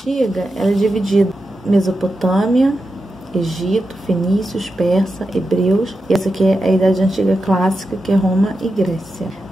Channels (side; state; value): both; normal; correlation 0.89